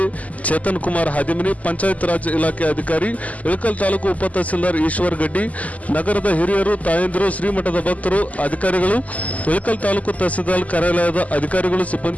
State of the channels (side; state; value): right; late; 0.073 ms